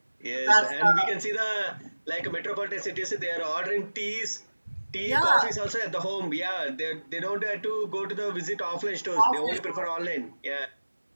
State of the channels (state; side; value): inverted; both; correlation -1.00